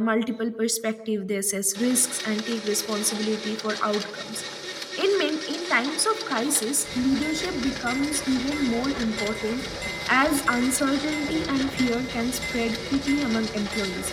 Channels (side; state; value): both; identical; correlation 1.00